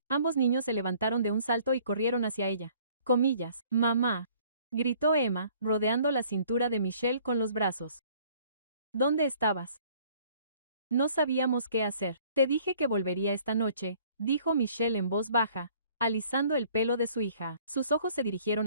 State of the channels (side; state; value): both; inverted; correlation -0.57